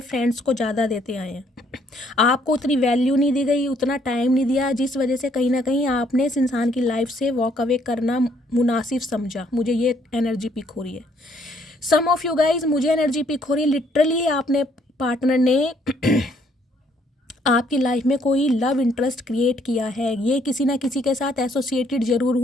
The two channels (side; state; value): both; normal; correlation 0.67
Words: फ्रेंड्स को ज़्यादा देते आए हैं। आपको उतनी वैल्यू नहीं दी गई, उतना टाइम नहीं दिया, जिस वजह से कहीं ना कहीं आपने इस इंसान की लाइफ से वॉक अवे करना मुनासिब समझा। मुझे ये एनर्जी पिक हो रही है। सम ऑफ यू गाइज, मुझे एनर्जी पिक हो रही है लिटरली आपने पार्टनर ने आपकी लाइफ में कोई लव इंटरेस्ट क्रिएट किया है। ये किसी ना किसी के साथ एसोसिएटेड ज़रूर